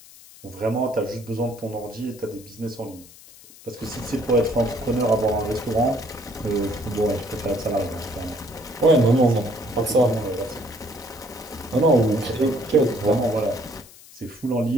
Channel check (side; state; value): left; noise; hiss, 21 dB below the sound